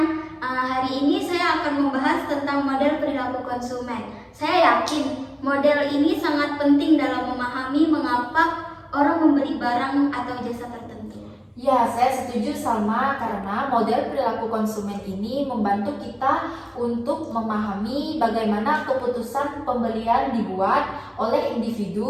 hari ini saya akan membahas tentang model perilaku konsumen. Saya yakin model ini sangat penting dalam memahami mengapa orang membeli barang atau jasa tertentu. Ya, saya setuju sama karena model perilaku konsumen ini membantu kita untuk memahami bagaimana keputusan pembelian dibuat oleh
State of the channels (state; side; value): identical; both; correlation 1.00